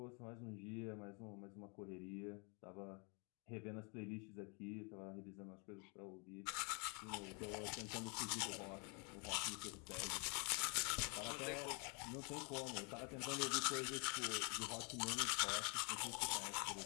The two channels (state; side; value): quieter; right; 34.4 dB